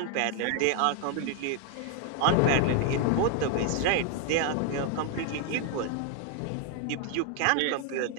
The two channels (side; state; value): both; different; correlation 0.00